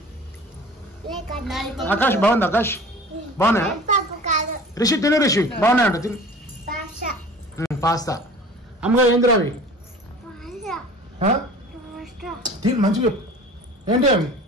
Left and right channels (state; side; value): normal; both; correlation 0.43